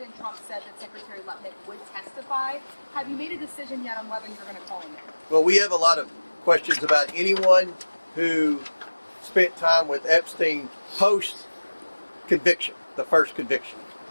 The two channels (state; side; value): inverted; both; correlation -1.00